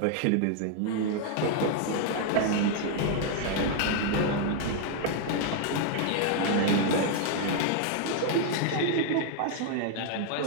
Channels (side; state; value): both; different; correlation 0.00